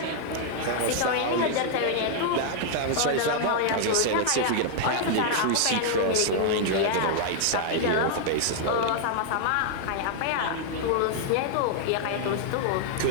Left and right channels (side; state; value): both; different; correlation 0.00